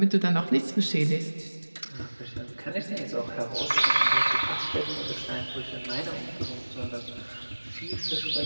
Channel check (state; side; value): inverted; both; correlation -1.00